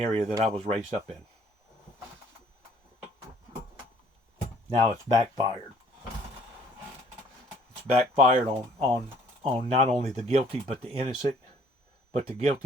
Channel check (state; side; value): normal; both; correlation 0.59